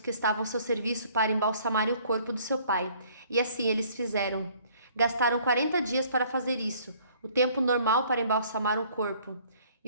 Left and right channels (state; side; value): inverted; both; correlation -0.58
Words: que estavam ao seu serviço para embalsamarem o corpo do seu pai, e assim eles fizeram. Gastaram 40 dias para fazer isso, o tempo normal para embalsamar um corpo,